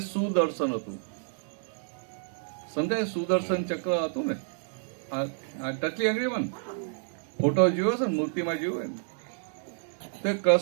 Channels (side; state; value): left; silent; digital silence